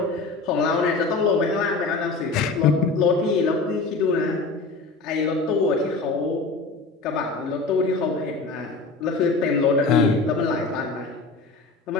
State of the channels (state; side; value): quieter; right; 3.8 dB